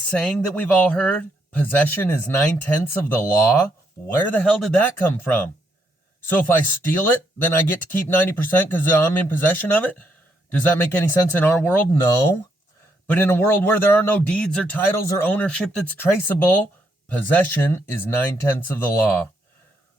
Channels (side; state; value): both; normal; correlation 0.76